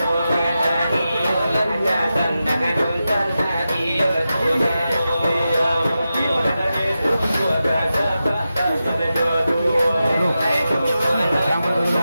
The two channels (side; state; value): both; inverted; correlation -0.91